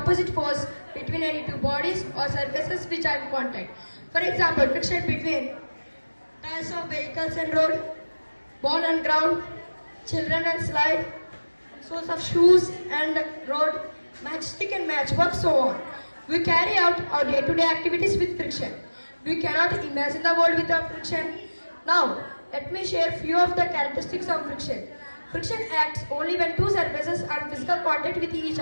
force between any two bodies or surfaces which are in contact. For example, friction between tires of vehicles and road, ball and ground, children and slide, soles of shoes and road, matchstick and matchbox, so on. We carry out our day-to-day activities with friction. We cannot imagine the world without friction. Now, let me share few of the characteristics of friction. Friction acts only when two surfaces are in physical contact with each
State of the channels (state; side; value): inverted; both; correlation -1.00